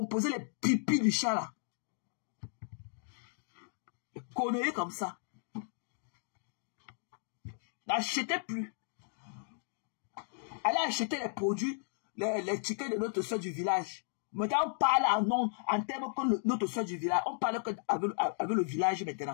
les pipis du chat là? Des conneries comme ça. N'achetez plus. Allez acheter les produits, les tickets de notre soeur du village. Maintenant, on parle en termes que notre soeur du village. On parle avec le village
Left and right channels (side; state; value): right; silent; digital silence